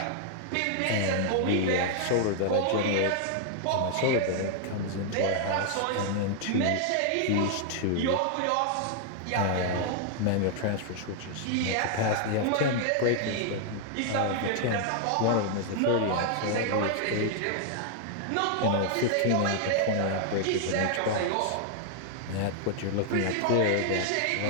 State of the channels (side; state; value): both; different; correlation 0.00